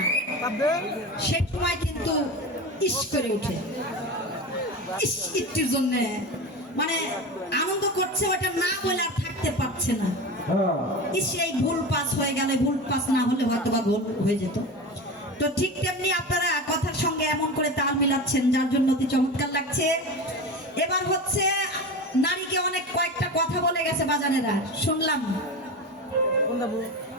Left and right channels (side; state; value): both; normal; correlation 0.27